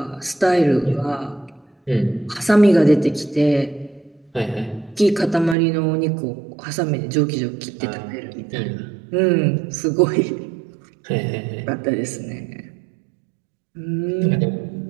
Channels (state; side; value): drops out; left; at 5.6 s